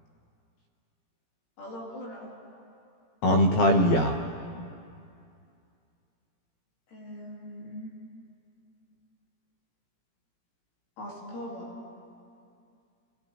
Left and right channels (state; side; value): late; right; 17 ms